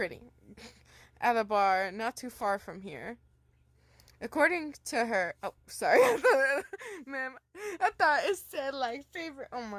At a bar not too far from here. According to her... Oh, sorry. Ma'am, I thought it said, like, favorite... Oh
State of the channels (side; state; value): both; identical; correlation 1.00